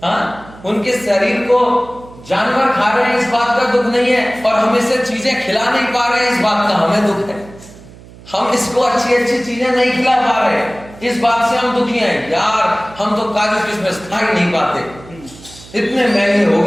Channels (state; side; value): noise; right; hum, 20 dB below the sound